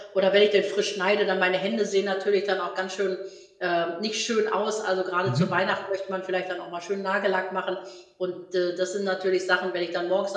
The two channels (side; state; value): both; identical; correlation 1.00